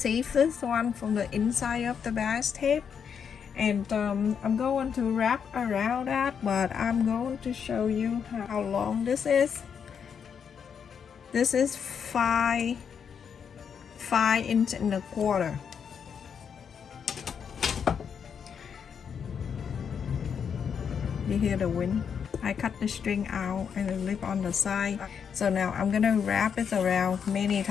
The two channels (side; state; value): right; quieter; 7.1 dB